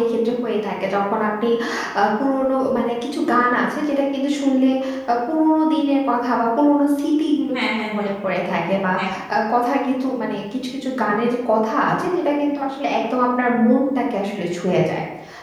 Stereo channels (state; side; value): identical; both; correlation 1.00